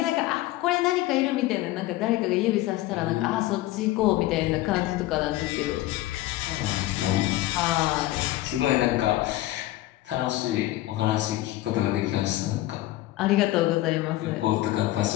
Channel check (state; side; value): quieter; right; 16.5 dB